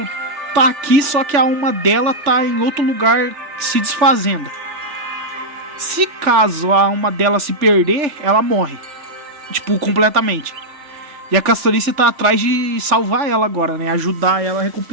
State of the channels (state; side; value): late; left; 3.4 ms